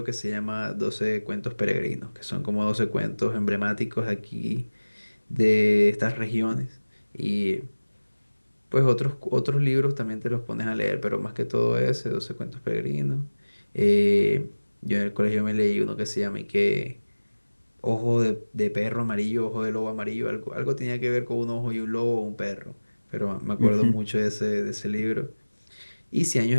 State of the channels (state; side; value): inverted; both; correlation -1.00